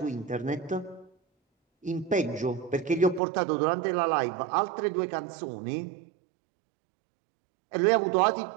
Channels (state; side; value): drops out; left; at 3.2 s